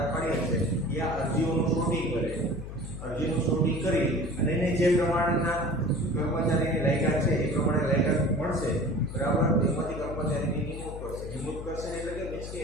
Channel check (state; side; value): noise; left; hum, 9 dB below the sound